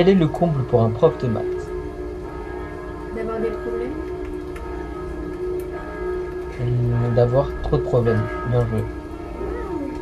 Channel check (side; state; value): both; identical; correlation 1.00